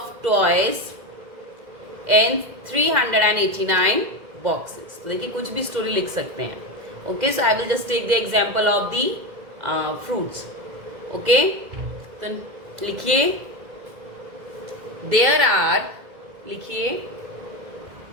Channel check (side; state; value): left; late; 2.0 ms